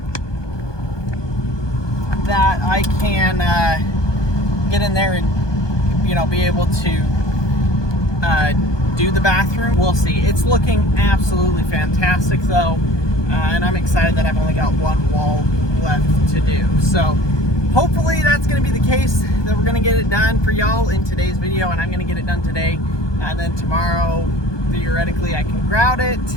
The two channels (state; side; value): late; right; 1.2 ms